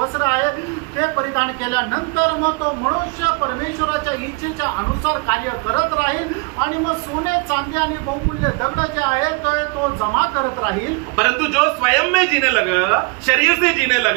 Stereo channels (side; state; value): left; quieter; 29.1 dB